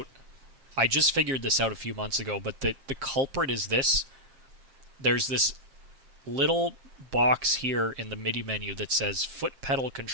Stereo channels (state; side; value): late; left; 7.5 ms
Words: I just figured this out a few months ago, but the culprit is this. There's this little box here in the MIDI menu that says foot pedal